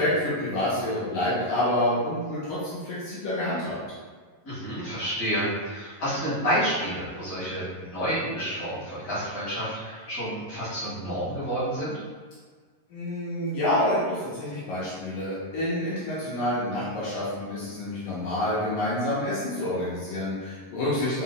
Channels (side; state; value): right; late; 11 ms